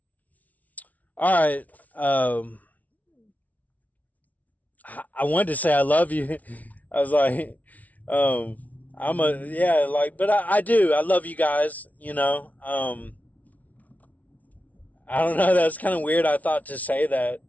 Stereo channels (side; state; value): right; late; 0.072 ms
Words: right. I wanted to say I love you. I was like, yeah, like, but I do. I love you guys. I don't know. That's kind of weird. I thought to say that.